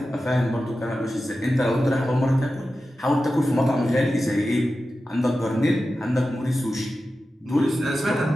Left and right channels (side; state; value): both; normal; correlation 0.93